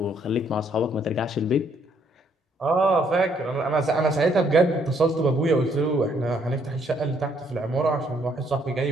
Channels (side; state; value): both; normal; correlation 0.68